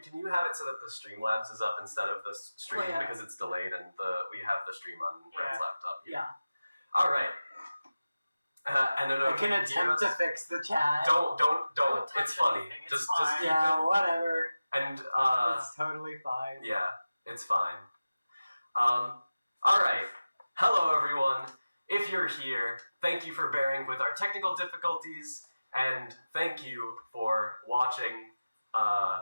can you have it so that the Streamlabs is up instead of the stream because it's delayed and we have the stream on Red's laptop here. Yeah. All right. And then I can attempt to fix the chat. Don't. Don't It's touch funny. anything. Just keep yeah, whatever. And it's totally fine. yeah, it's fine. All right. Hello, everyone. If you're here, thank you for bearing with our technical difficulties, and thank you for watching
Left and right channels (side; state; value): both; inverted; correlation -0.97